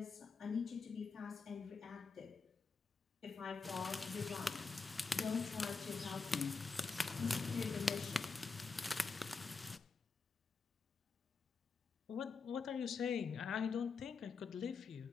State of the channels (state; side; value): quieter; right; 4.6 dB